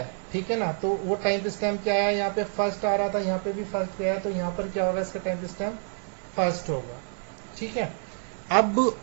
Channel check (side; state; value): left; silent; 60 dB below the other